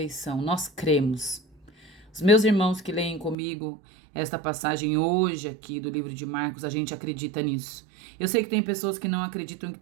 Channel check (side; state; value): left; drops out; at 3.4 s